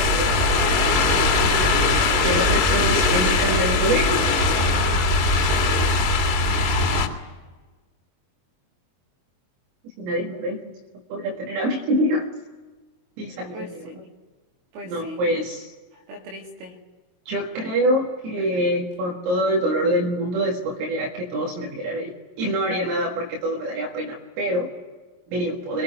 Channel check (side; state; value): left; late; 22 ms